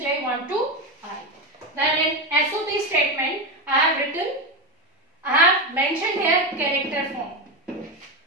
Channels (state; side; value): normal; both; correlation 0.13